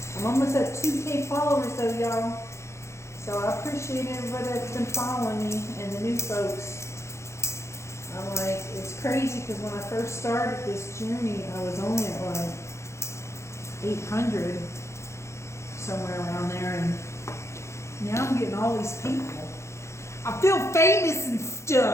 I'm almost at 2K followers though, y'all. So I appreciate everybody that's been following me and the new folks. I'm like, it's crazy because when I first started this journey, I was only at like 800, somewhere around there, and now I'm getting all these people. I feel famous and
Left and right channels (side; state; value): right; late; 0.13 ms